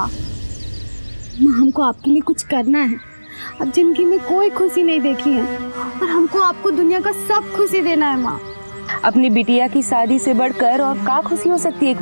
हमको आपके लिए कुछ करना है। अब जिंदगी में कोई खुशी नहीं देखी है और हमको आपको दुनिया का सब खुशी देना है माँ। अपनी बिटिया की शादी से बढ़कर और क्या खुशी हो सकती है एक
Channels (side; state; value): both; inverted; correlation -1.00